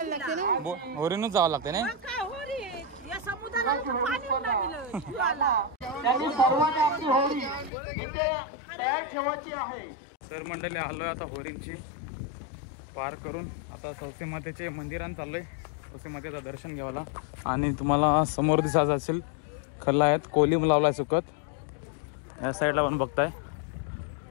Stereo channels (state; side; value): drops out; right; at 7.7 s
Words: होरीनच जावं लागते ना? तर मंडळी, आलोय आता होरींची पार करून, आता सौसे मातेचे मंदिरात चाललोय सौसे मातेचं दर्शन घ्यायला। आणि तुम्हाला समोर दिसत असेल खल्ला आहेत, कोलिम लावलाय सुकत, या साईडला पण बघताय।